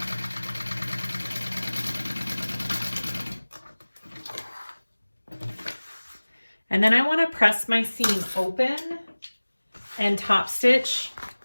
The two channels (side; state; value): both; inverted; correlation -1.00